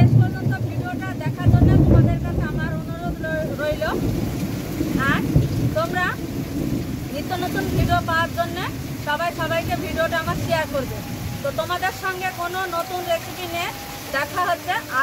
পর্যন্ত ভিডিওটা দেখার জন্য তোমাদের কাছে আমার অনুরোধ রইল। আর তোমরা নিত্য নতুন ভিডিও পাওয়ার জন্য সবাইকে ভিডিওটা আমার শেয়ার করবে। তো তোমাদের সঙ্গে কোনো নতুন রেসিপি নিয়ে দেখা হচ্ছে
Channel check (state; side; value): identical; both; correlation 1.00